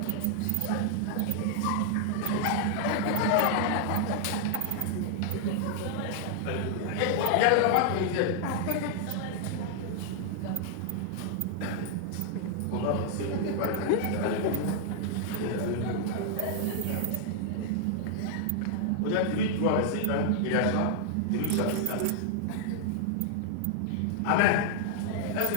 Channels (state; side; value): different; both; correlation -0.01